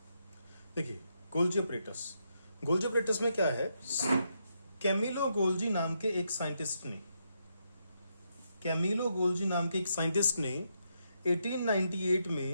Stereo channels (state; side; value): inverted; both; correlation -0.80